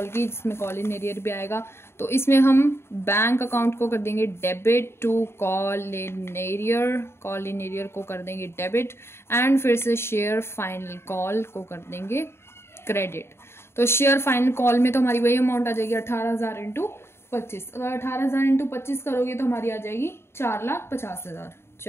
की, जिसमें कॉल इन एरियर भी आएगा। तो इसमें हम बैंक अकाउंट को कर देंगे debit to call in arrear को कर देंगे डेबिट, एंड फिर से शेयर फाइनल कॉल को कर देंगे क्रेडिट। तो शेयर फाइनल कॉल में तो हमारी वही अमाउंट आ जाएगी 18,000 इंटू 25। अगर 18,000 इंटू 25 करोगे तो हमारी आ जाएगी 4,50,000,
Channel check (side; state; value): right; late; 0.12 ms